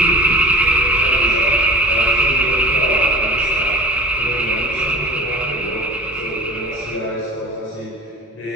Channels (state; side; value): normal; both; correlation 0.37